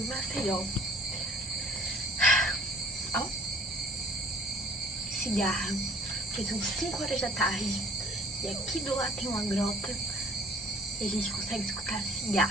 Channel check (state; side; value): normal; both; correlation 0.52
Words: Maceió. Ó, cigarra, porque são 5 horas da tarde e aqui do lado tem uma grota e a gente consegue escutar a